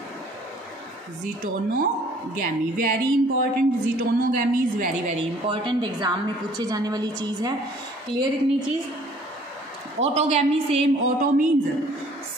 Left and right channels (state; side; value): normal; both; correlation 0.55